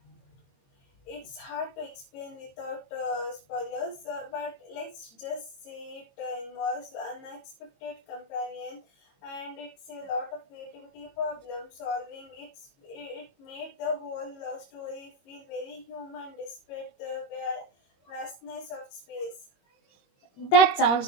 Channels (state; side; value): late; right; 22 ms